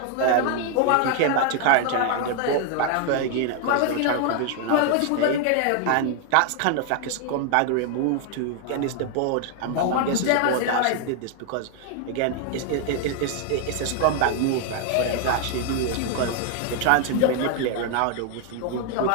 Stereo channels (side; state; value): both; different; correlation 0.00